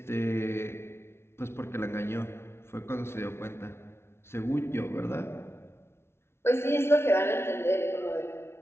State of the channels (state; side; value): late; right; 0.12 ms